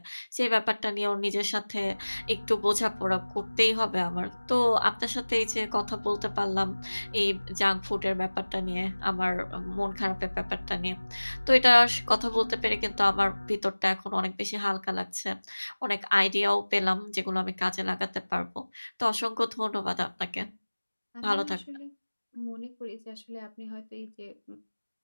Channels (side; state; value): both; inverted; correlation -1.00